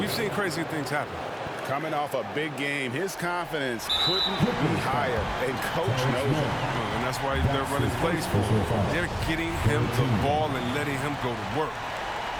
we've seen crazy things happen. Coming off a big game, his confidence couldn't be higher, and coach knows it. And that's why they're running plays for him. They're getting him the ball and letting him go to work.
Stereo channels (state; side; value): identical; both; correlation 1.00